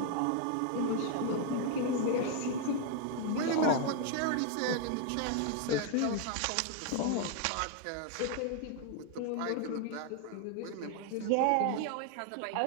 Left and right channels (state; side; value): different; both; correlation 0.00